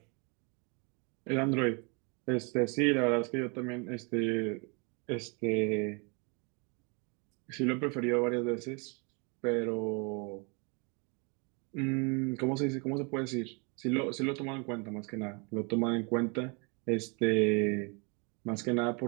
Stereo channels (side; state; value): left; quieter; 33.1 dB